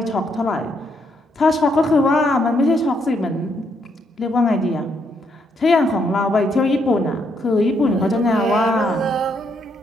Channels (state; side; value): normal; both; correlation 0.75